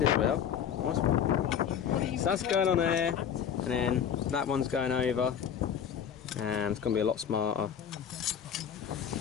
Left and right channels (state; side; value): quieter; right; 8.3 dB